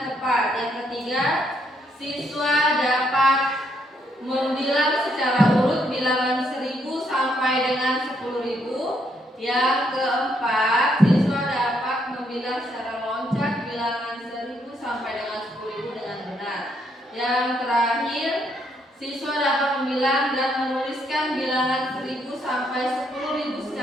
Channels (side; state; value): both; normal; correlation 0.73